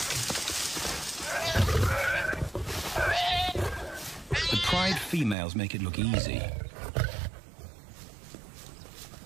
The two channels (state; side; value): drops out; left; at 5.4 s